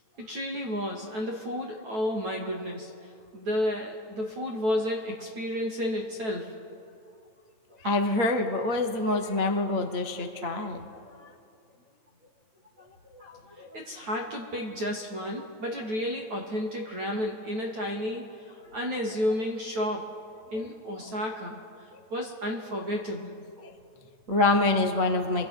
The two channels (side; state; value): left; late; 9.2 ms